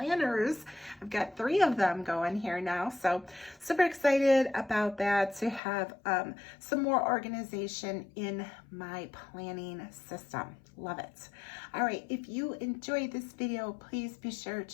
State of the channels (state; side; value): drops out; right; at 5.6 s